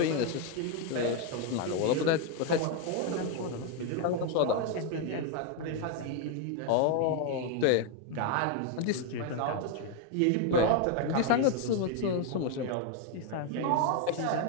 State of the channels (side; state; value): both; different; correlation 0.01